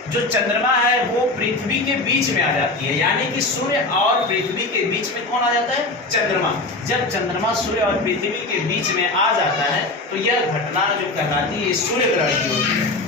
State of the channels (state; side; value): quieter; right; 3.1 dB